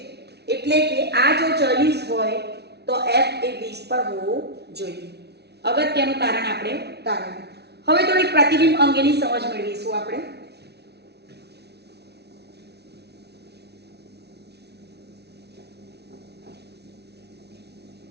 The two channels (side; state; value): left; late; 0.49 ms